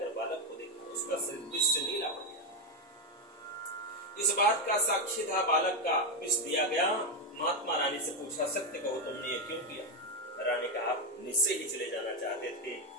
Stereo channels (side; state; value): both; normal; correlation 0.07